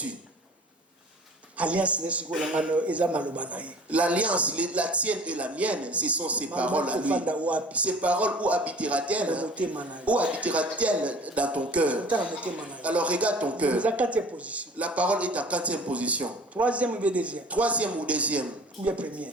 L'alliance, la tienne et la mienne, ce sont ses paroles à lui. Ces paroles, où habitera-t-elle? Où habitera-t-elle dans ton cœur? Alors regarde ton cœur. La parole est en 4e position. Troisième ou deuxième? Troisième ou deuxième?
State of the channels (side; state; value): both; normal; correlation 0.46